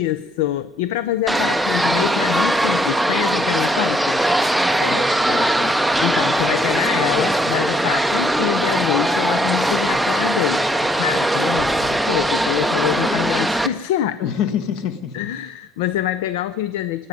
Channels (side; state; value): both; normal; correlation 0.67